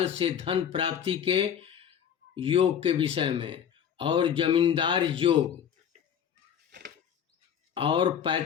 से धन प्राप्ति के योग के विषय में और जमींदार योग और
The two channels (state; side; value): quieter; right; 8.6 dB